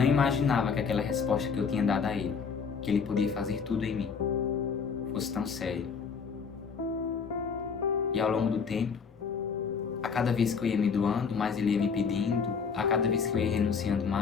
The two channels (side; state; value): right; quieter; 5.9 dB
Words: imaginava que aquela resposta que eu tinha dado a ele, que ele podia fazer tudo em mim, fosse tão sério. E ao longo do tempo, a cada vez que eu ia me doando, mais ele ia me pedindo. A cada vez que eu ia renunciando